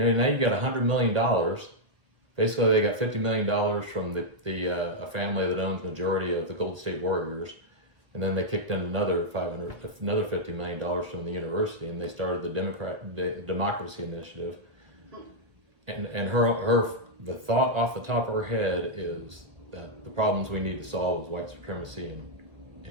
you got $100 million. Basically, they got $50 million from a family that owns majority of the Golden State Warriors, and then they kicked in another $50 million from the university, and they started the Democracy Initiative. And the thought off the top of her head is that the problems we need to solve is white supremacy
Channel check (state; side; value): late; left; 1.8 ms